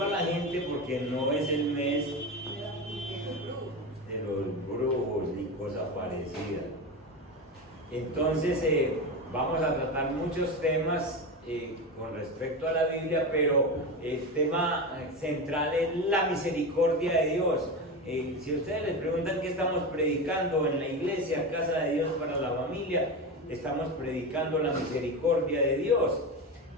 a la gente, porque no es el mes de los brujos ni cosa parecida. Entonces vamos a tratar muchos temas con respecto a la Biblia, pero el tema central es la misericordia de Dios. Si ustedes les preguntan qué estamos predicando en la iglesia, Casa de Dios para la Familia, estamos predicando la misericordia de Dios,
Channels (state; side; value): normal; both; correlation 0.20